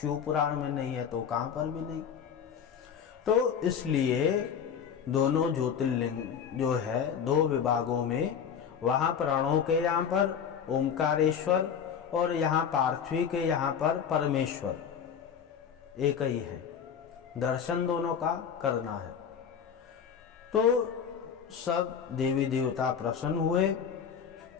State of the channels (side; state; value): right; quieter; 7.6 dB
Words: पुराण में नहीं है तो कहाँ पर भी नहीं। तो इसलिए दोनों ज्योतिर्लिंग जो है दो विभागों में, वहाँ प्रणव के यहाँ पर ओमकारेश्वर और यहाँ पार्थिवी के यहाँ पर परमेश्वर एक ही है, दर्शन दोनों का करना है। तो सब देवी देवता प्रसन्न हुए